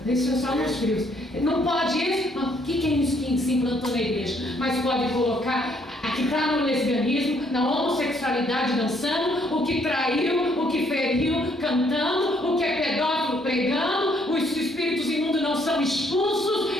isso é só nos frios. Não pode isso. O que é isso que se implantou na igreja? Mas pode colocar que está no lesbianismo, na homossexualidade dançando, o que traiu, o que feriu cantando, o que é pedófilo pregando, os espíritos imundos não são expulsos.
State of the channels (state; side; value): normal; both; correlation 0.68